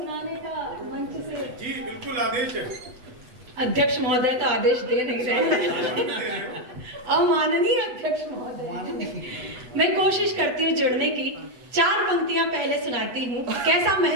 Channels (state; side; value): late; left; 8.1 ms